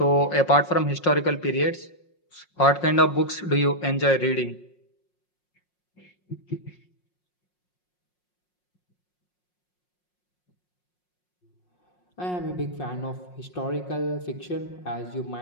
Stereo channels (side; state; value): right; late; 5.5 ms